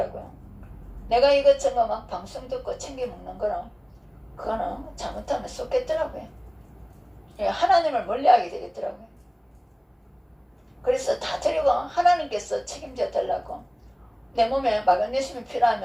내가 이것저것 막 방송 듣고 챙겨 먹는 거는 그거는 잘못하면 쏟겠더라고요. 하나님을 멀리하게 되겠더라고요. 그래서 다 드리고 하나님께서 책임져 달라고 내 몸에 마그네슘이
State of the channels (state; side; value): identical; both; correlation 1.00